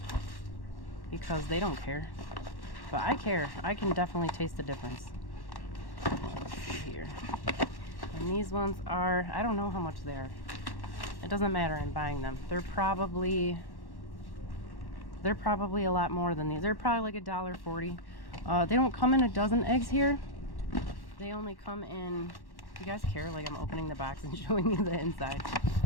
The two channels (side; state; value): right; late; 1.1 ms